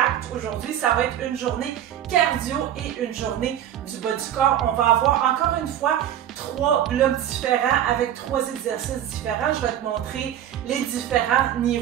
Aujourd'hui, ça va être une journée cardio et une journée du bas du corps. On va avoir encore une fois 3 blocs différents avec 3 exercices différents. Je vais te montrer les différents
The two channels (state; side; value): quieter; left; 10.9 dB